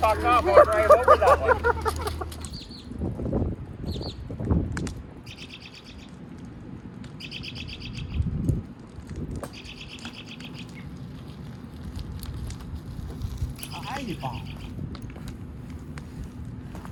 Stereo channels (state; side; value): identical; both; correlation 1.00